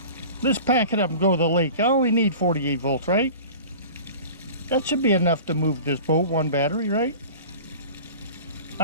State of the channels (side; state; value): both; inverted; correlation -0.39